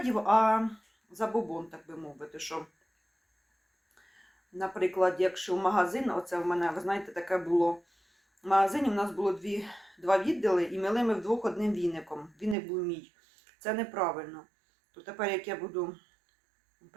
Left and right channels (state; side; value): drops out; left; at 12.6 s